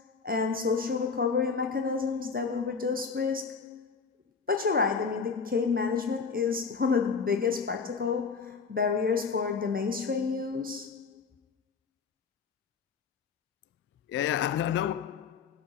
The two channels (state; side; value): quieter; right; 5.4 dB